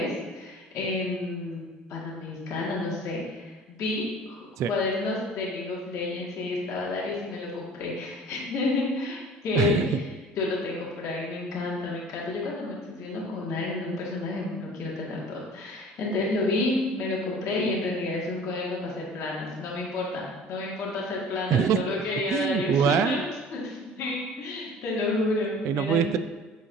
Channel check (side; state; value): both; normal; correlation 0.45